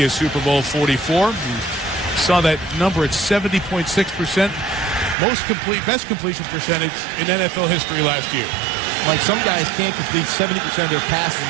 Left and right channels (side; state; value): left; drops out; at 5.2 s